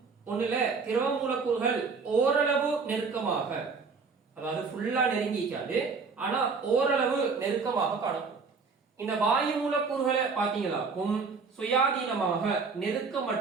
ஒண்ணுல திரவ மூலக்கூறுகள் ஓரளவு நெருக்கமாக, அதாவது ஃபுல்லா நெருங்கிக்காது, ஆனா ஓரளவு நெருக்கமாக காணப்படும். இந்த வாயு மூலக்கூறுகளை பார்த்தீங்களாக்கும் சுயாதீனமாக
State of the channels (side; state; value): left; quieter; 4.8 dB